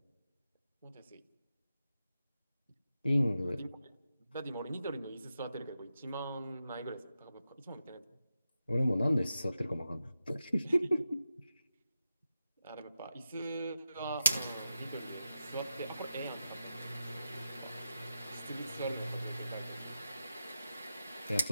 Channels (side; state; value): both; inverted; correlation -0.88